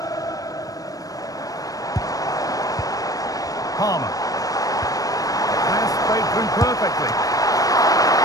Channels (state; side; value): late; right; 0.17 ms